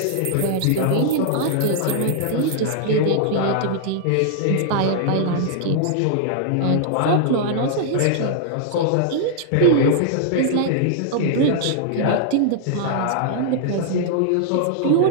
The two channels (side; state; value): both; different; correlation -0.01